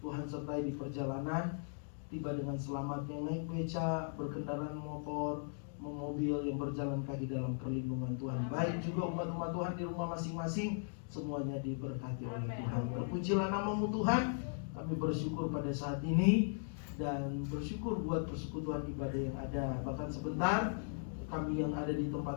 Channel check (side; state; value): right; silent; digital silence